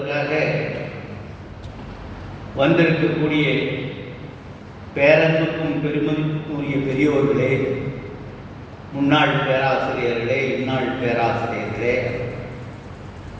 வந்திருக்கக்கூடிய பேரன்புக்கும் பெருமதிப்புக்கும் உரிய பெரியோர்களே, முன்னாள் பேராசிரியர்களே, இந்நாள் பேராசிரியர்களே,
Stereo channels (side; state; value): both; identical; correlation 1.00